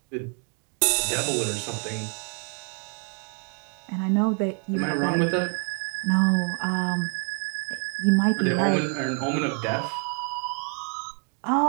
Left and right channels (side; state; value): left; quieter; 39.6 dB